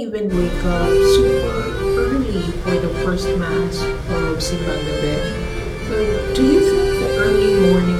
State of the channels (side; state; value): both; identical; correlation 1.00